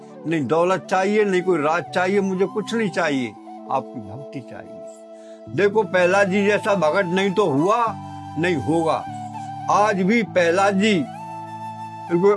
नहीं दौलत चाहिए, नहीं कोई राज चाहिए, मुझे कुछ नहीं चाहिए, आपकी भक्ति चाहिए। देखो प्रहलाद जी जैसा भगत नहीं तो हुआ नहीं होगा। आज भी प्रहलाद जी,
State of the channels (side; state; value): both; identical; correlation 1.00